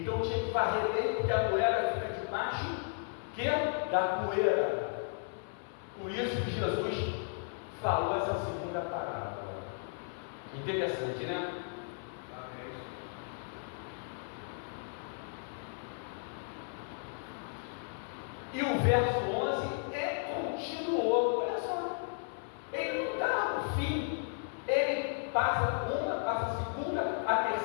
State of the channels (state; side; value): silent; right; 55 dB below the other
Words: tinha que varrer bem, porque a moeda fica debaixo da poeira. Por isso que Jesus falou essa segunda parábola. Interessante, né? E o verso 11 continuou. Olha só, ele não dá o fim, ele passa uma, passa a segunda, a